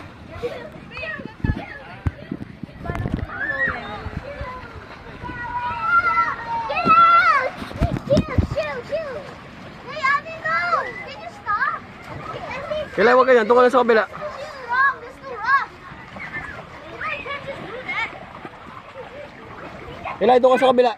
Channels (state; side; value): identical; both; correlation 1.00